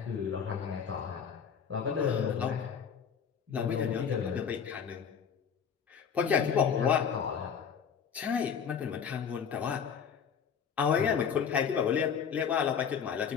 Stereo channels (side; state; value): right; quieter; 7.1 dB